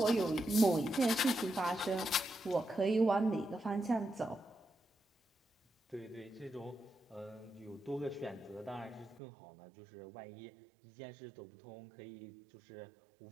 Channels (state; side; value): drops out; left; at 9.2 s